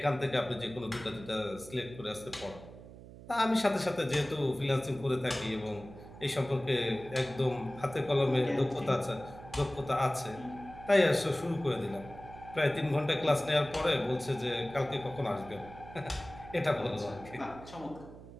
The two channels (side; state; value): right; noise; hum, 16 dB below the sound